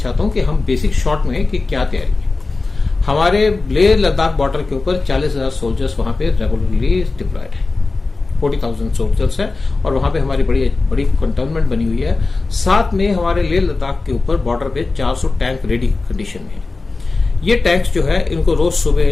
हूं कि हम बेसिक शॉर्ट में कि क्या तैयारी है। हमारे लेह लद्दाख बॉर्डर के ऊपर 40,000 सोल्जर्स वहां पे रेगुलरली डिप्लॉयड है, 40,000 सोल्जर्स है, और वहां पे हमारी बड़ी कंटोनमेंट बनी हुई है। साथ में हमारे लेह लद्दाख के ऊपर बॉर्डर पे 400 टैंक रेडी कंडीशन में है। ये टैंक्स जो है इनको रोज सुबह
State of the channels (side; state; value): right; quieter; 3.7 dB